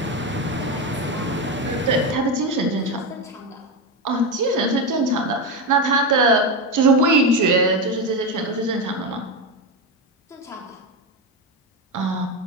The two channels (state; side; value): normal; both; correlation 0.13